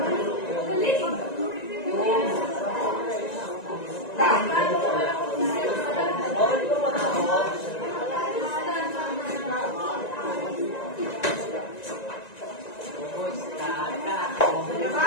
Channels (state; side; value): late; right; 1.9 ms